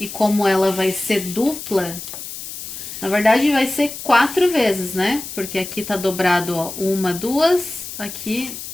como ela vai ser dupla, na verdade vai ser 4 vezes, né? Porque aqui tá dobrado, ó, 1, 2, aqui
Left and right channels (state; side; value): noise; left; hiss, 10 dB below the sound